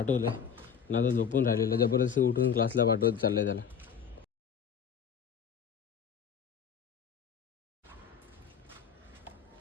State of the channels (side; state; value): right; quieter; 7.5 dB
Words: ना, आता झोपून राहिलेलं. जबरदस्ती उठून क्लासला पाठवत चाललंय त्याला.